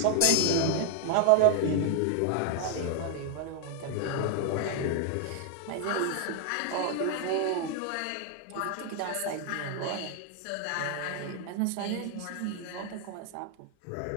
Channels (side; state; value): both; different; correlation 0.00